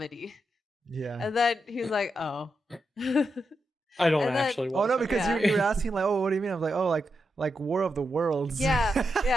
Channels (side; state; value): both; normal; correlation 0.85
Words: Yeah. And then he was like, oh. I don't And then- actually want Oh no, that. because Yeah. you were asking like, oh, what do you mean? I was like, oh, like War of the Worlds. yeah,